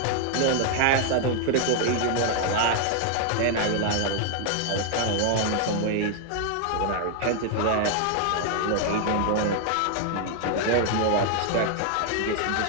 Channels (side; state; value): both; different; correlation 0.00